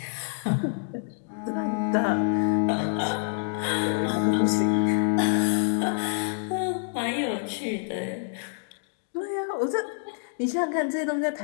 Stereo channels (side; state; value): right; silent; digital silence